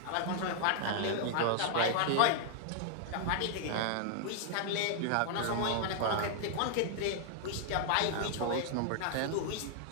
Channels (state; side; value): different; both; correlation 0.00